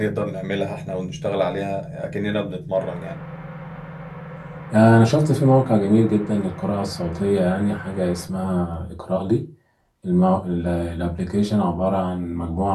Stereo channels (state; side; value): identical; both; correlation 1.00